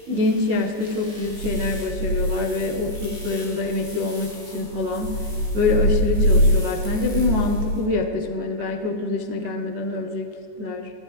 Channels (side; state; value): left; late; 19 ms